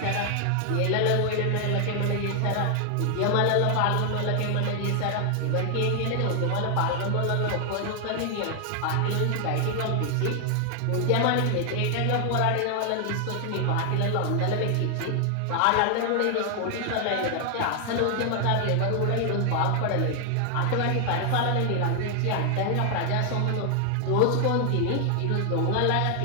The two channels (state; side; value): different; both; correlation 0.00